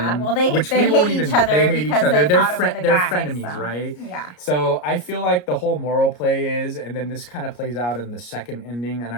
Well, they hate each other. They hate each other. They're frenemies, right? Yeah. So I feel like the whole moral play is, and then this kind of plays out in the second ending, and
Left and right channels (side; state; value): right; late; 33 ms